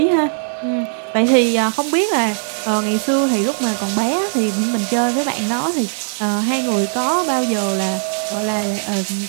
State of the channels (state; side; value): silent; left; 67 dB below the other